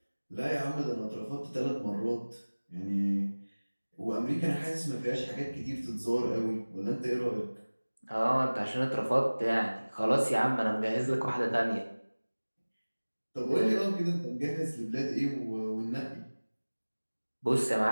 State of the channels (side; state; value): both; inverted; correlation -1.00